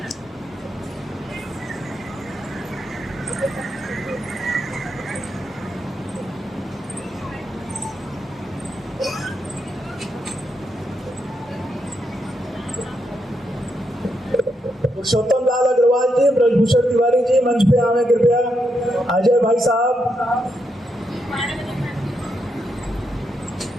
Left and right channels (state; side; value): normal; both; correlation 0.81